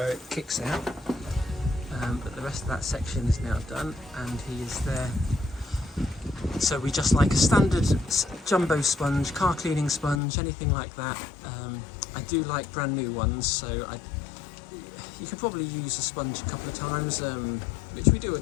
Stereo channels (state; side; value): drops out; right; at 10.2 s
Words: it kicks out. But the rest of that section is now done, and he is there. So we just like a standard jumbo sponge, car cleaning sponge, anything like that. I do like brand new ones, so you can probably use a sponge a couple of times, which we do